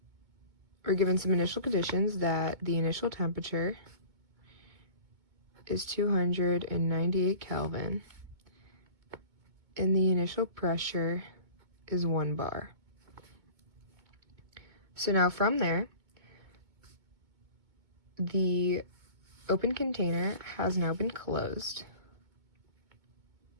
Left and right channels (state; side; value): late; left; 2.2 ms